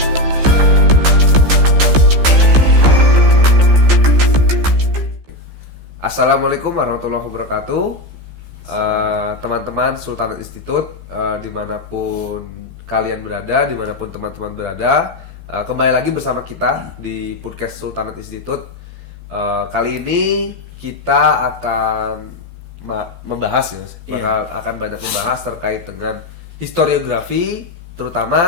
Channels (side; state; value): left; late; 15 ms